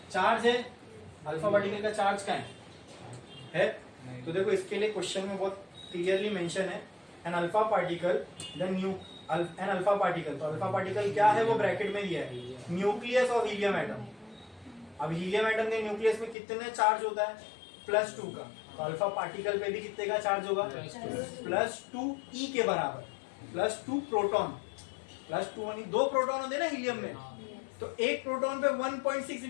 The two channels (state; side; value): drops out; right; at 16.4 s